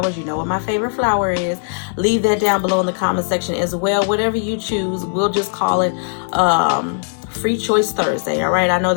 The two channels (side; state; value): right; silent; digital silence